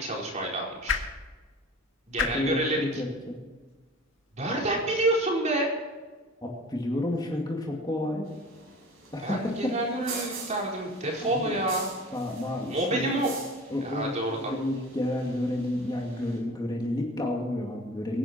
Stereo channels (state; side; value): normal; both; correlation 0.40